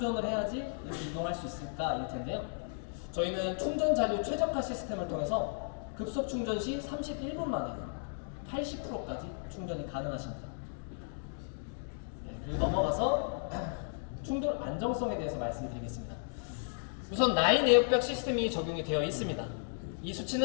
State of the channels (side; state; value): right; silent; digital silence